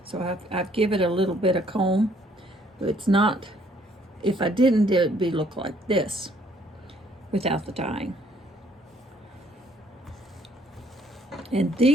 I've given it a little bit of comb. But it's not, if I didn't, it would look like this without the dyeing. And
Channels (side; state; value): both; normal; correlation 0.64